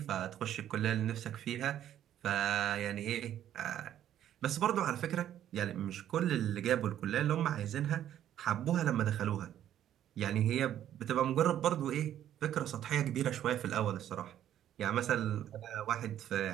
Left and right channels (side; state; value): left; quieter; 11.2 dB